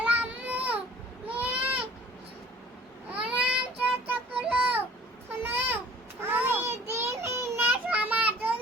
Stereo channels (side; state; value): both; normal; correlation 0.50